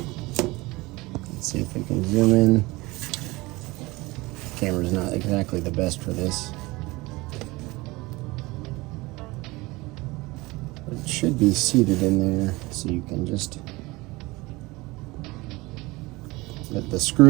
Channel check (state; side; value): quieter; left; 22.1 dB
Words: Let's see if we can zoom in. Camera's not exactly the best for this. But it should be seated in there, so you can just let the